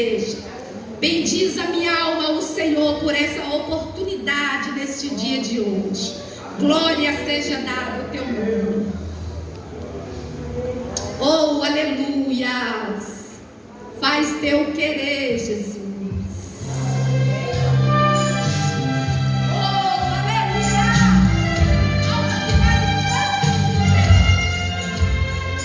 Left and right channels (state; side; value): identical; both; correlation 1.00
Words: Bendiz a minha alma ao Senhor por essa oportunidade neste dia de hoje. Glória seja dada ao teu nome. Oh, aleluia. Faz teu querer, Jesus.